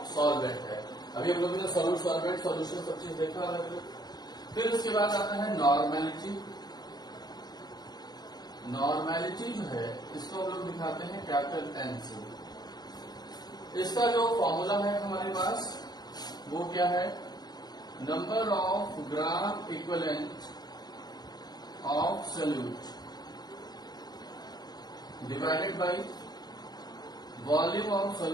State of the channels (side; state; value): right; late; 0.20 ms